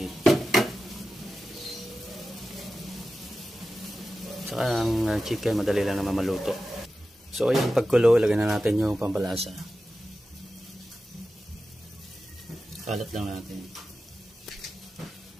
Saka ang chicken, madali lang naman maluto. So ayun, pagkulo, lagyan na natin yung pampalasa. Kalat lang natin.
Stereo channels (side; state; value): both; normal; correlation 0.93